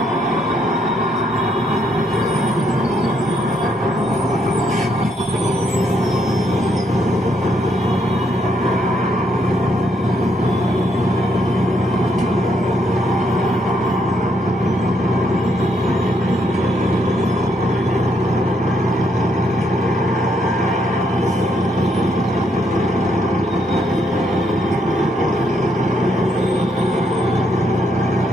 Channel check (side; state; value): both; normal; correlation 0.74